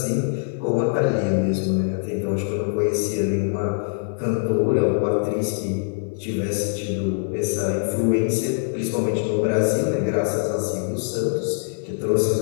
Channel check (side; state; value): right; silent; digital silence